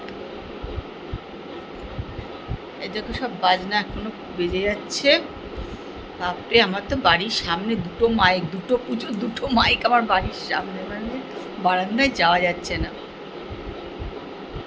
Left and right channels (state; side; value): identical; both; correlation 1.00